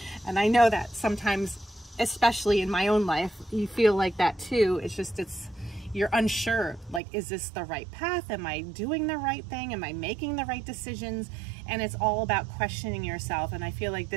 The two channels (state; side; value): drops out; left; at 7.0 s